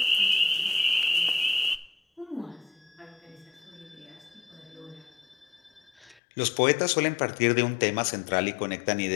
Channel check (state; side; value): drops out; right; at 6.2 s